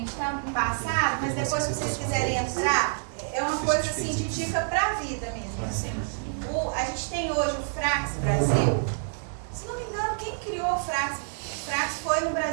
tá embaçado, mas depois se vocês quiserem entrar, é uma coisa assim de dica pra vida mesmo. Assim. A gente tem hoje o Frax Brasil. Se não me engano, quem criou o Frax? O Frax foi no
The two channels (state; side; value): silent; left; 60 dB below the other